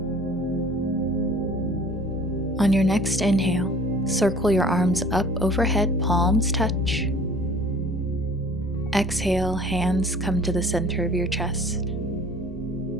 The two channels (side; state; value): both; normal; correlation 0.49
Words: On your next inhale, circle your arms up overhead, palms touch. Exhale, hands come to the center of your chest.